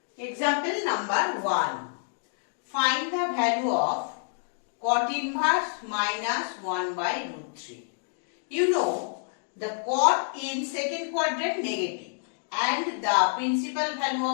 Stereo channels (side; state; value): right; silent; digital silence